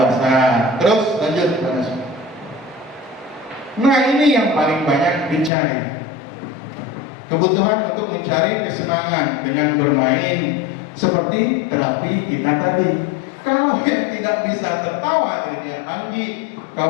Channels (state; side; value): drops out; right; at 5.5 s